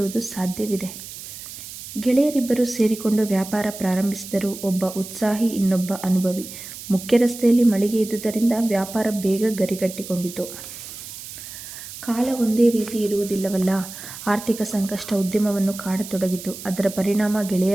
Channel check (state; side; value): noise; right; hiss, 12 dB below the sound